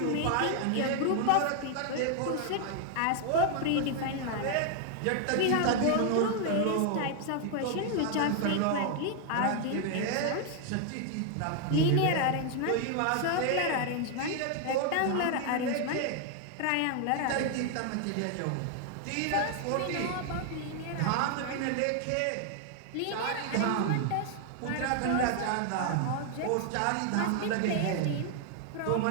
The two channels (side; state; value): both; different; correlation 0.00